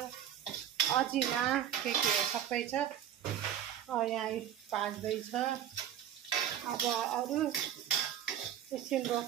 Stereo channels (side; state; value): left; quieter; 10.3 dB